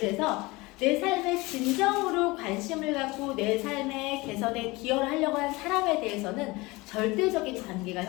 내 삶에 진정으로 관심을 갖고 내 삶의 개선에 기여를 하려고 하는 사람에 대해서는 절대적인 관계가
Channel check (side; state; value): right; quieter; 22.7 dB